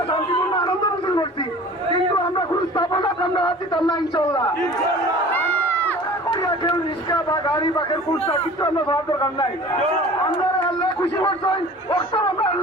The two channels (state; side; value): normal; both; correlation 0.43